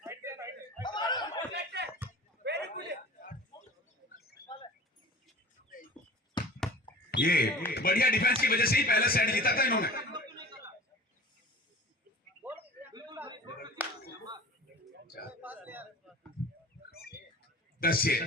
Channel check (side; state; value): both; normal; correlation 0.41